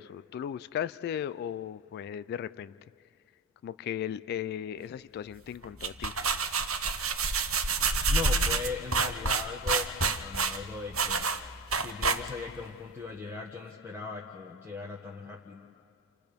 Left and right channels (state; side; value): normal; both; correlation 0.23